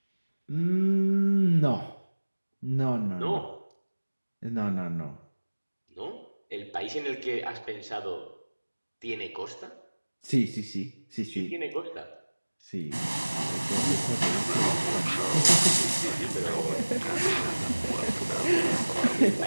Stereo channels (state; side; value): inverted; both; correlation -1.00